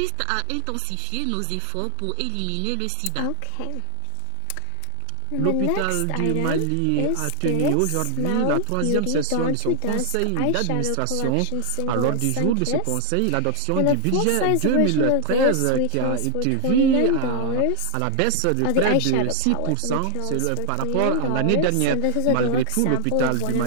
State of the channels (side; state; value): both; different; correlation 0.00